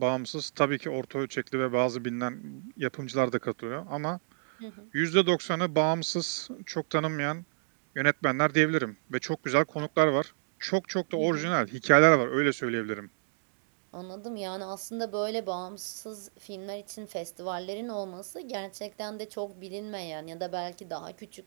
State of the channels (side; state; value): left; silent; digital silence